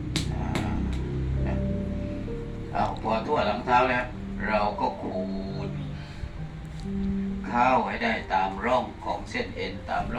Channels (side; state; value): both; identical; correlation 1.00